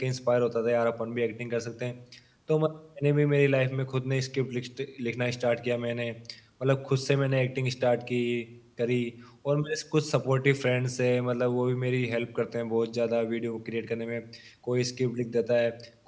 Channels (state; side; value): identical; both; correlation 1.00